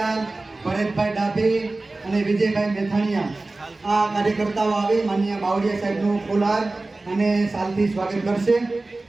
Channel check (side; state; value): left; quieter; 3.1 dB